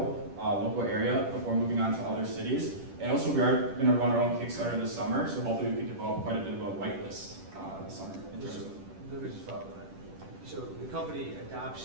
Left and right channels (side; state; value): left; late; 10 ms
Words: local area before moving on to other cities. And also we are gonna run our own Kickstarter this summer. So hopefully we can develop quite a bit of a whitelist this summer. In terms of Let me just follow that. So the company